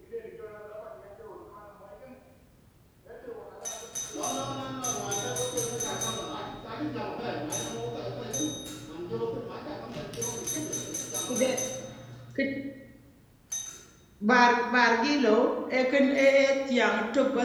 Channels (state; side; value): identical; both; correlation 1.00